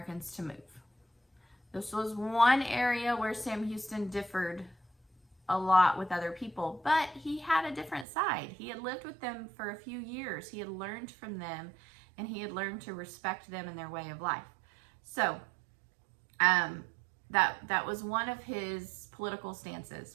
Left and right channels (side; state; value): left; drops out; at 8.1 s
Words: to move. This was one area where Sam Houston differed a lot with other people, but he had a different side. He had lived with them for a few years. He had learned from them, and he had learned to respect them and their way of life. So that was one of his political stances,